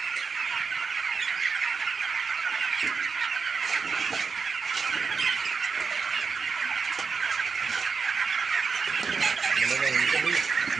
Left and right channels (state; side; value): quieter; left; 5.2 dB